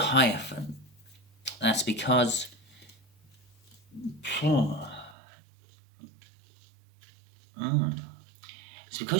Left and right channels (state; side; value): drops out; left; at 5.2 s